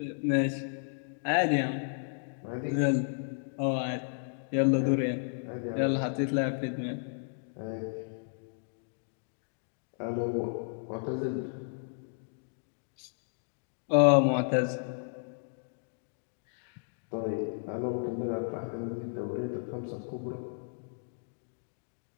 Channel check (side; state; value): right; silent; digital silence